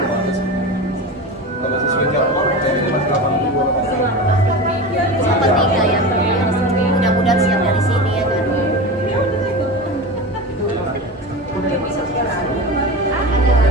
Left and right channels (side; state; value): both; normal; correlation 0.27